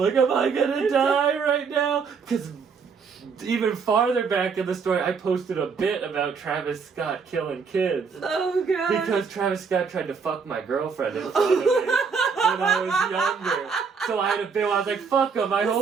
gonna die right now? Because even farther back in the story, I posted a bit about Travis Scott killing kids. Oh god. Because Travis Scott tried to fuck my girlfriend in front of me when I was younger. So I had a bit where I was like, fuck him, I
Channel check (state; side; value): quieter; left; 5.6 dB